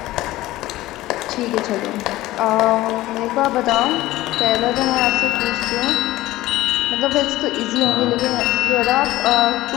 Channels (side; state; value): right; quieter; 16.9 dB